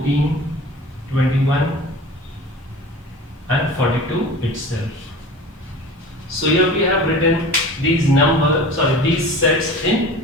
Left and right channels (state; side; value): normal; both; correlation 0.38